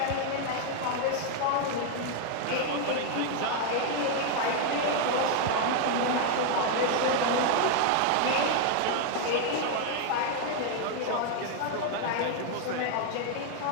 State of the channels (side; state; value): both; different; correlation 0.00